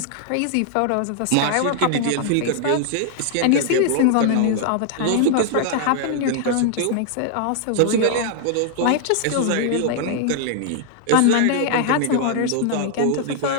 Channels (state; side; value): different; both; correlation 0.00